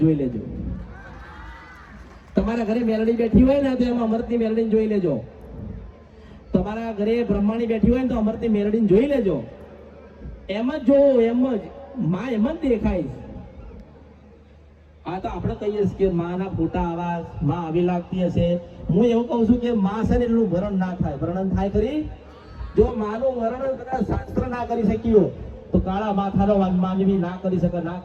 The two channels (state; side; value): identical; both; correlation 1.00